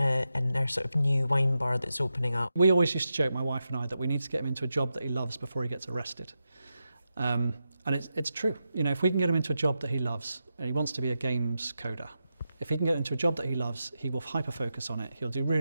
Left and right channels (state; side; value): inverted; both; correlation -0.88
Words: their sort of new wine bar that's opening up. We always used to joke, my wife and I, that we need to get him into a job that he loves before he gets arrested. And it's true. You know, if we can get him into a job that he loves, and he wants to be a games coder, if he can get into a job that he loves, he will hyper-focus on it, he'll do